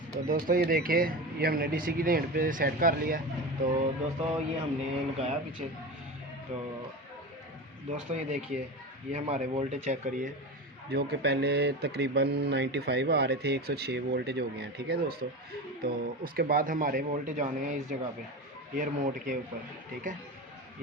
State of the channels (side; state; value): both; normal; correlation 0.26